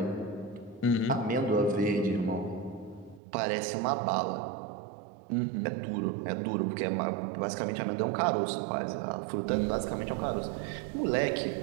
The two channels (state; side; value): drops out; left; at 3.2 s